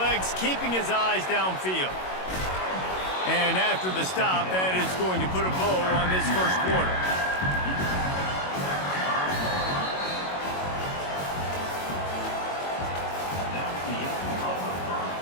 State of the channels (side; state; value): right; late; 22 ms